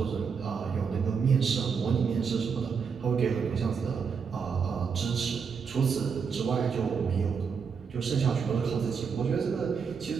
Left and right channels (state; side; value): quieter; left; 6.1 dB